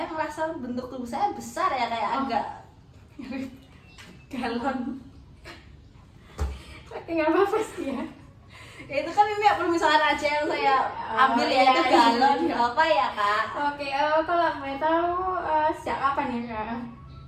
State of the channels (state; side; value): identical; both; correlation 1.00